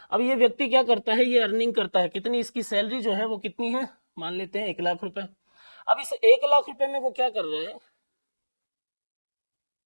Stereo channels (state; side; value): inverted; both; correlation -1.00